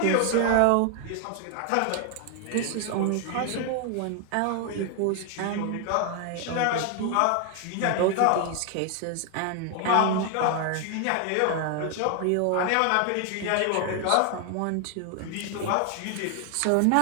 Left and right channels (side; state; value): both; different; correlation 0.00